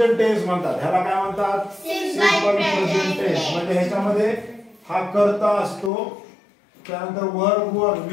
टेन्स म्हणतात। ह्याला काय म्हणतात? Simple present tense. म्हणजे ह्याच्यामध्ये हा कर्ता असतो, त्यानंतर वर्ब वर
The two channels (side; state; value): right; drops out; at 5.9 s